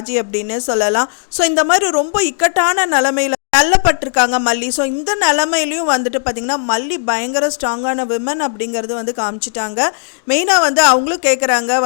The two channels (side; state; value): right; silent; digital silence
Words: அப்படின்னு சொல்லலாம். ஸோ இந்த மாதிரி ரொம்ப இக்கட்டான நிலைமையில் தள்ளப்பட்டிருக்காங்க மல்லி. ஸோ இந்த நிலைமையிலையும் வந்துட்டு பார்த்திங்கன்னா மல்லி பயங்கர ஸ்ட்ராங்கான விமன் அப்படிங்கிறது வந்து காமிச்சிட்டாங்க. மெயினாக வந்து அவங்களும் கேட்குறாங்க